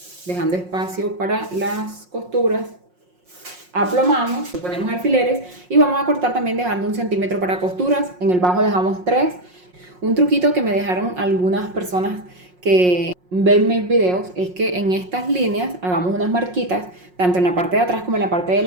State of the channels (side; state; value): left; late; 5.5 ms